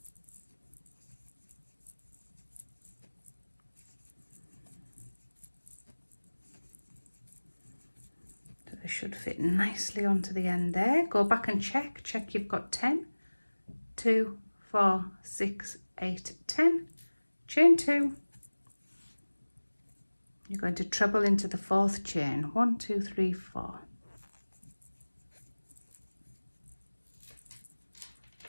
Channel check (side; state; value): both; inverted; correlation -1.00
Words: Should fit nicely onto the end there. Go back and check you've got 10. 2, 4, 6, 8, 10. Chain 2. You're going to treble into the 4th chain. 1, 2, 3, 4.